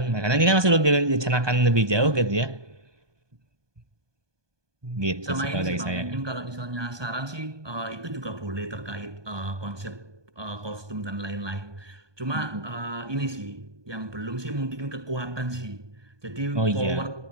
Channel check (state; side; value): late; left; 1.2 ms